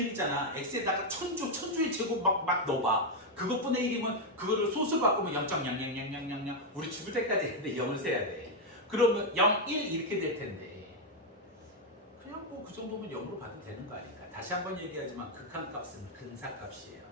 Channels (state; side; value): normal; both; correlation 0.02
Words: 1이잖아. x에다가 천주의 제곱 막 넣어봐. 그것분의 1이면 그거를 소수 바꾸면 0.000000 우리 죽을 때까지 했는데 0을 세야 돼. 그러면 0, 1 이렇게 될 텐데 그냥 뭐 그 정도면 0으로 봐도 되는 거 아닐까. 다시 한번 얘기하지만 극한값은 근사값이에요.